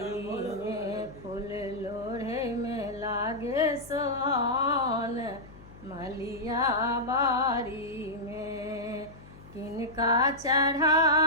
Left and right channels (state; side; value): noise; left; hum, 19 dB below the sound